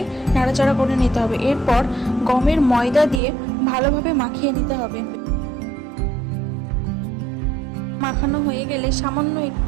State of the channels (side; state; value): left; drops out; at 3.2 s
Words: নাড়াচাড়া করে নিতে হবে। এরপর গমের ময়দা দিয়ে ভালোভাবে মাখিয়ে নিতে হবে। মাখানো হয়ে গেলে সামান্য